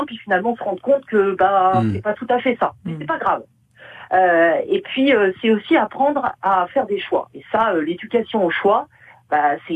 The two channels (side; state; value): both; identical; correlation 1.00